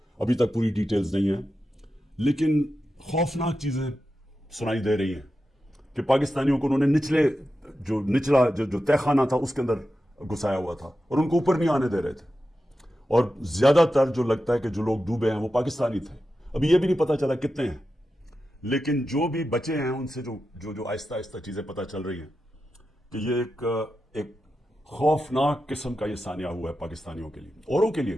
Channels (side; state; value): both; normal; correlation 0.90